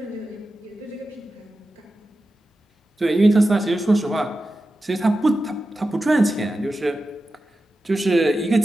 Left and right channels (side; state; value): both; normal; correlation 0.92